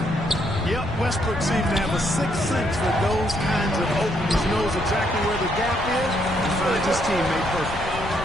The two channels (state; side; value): noise; left; rumble, 10 dB below the sound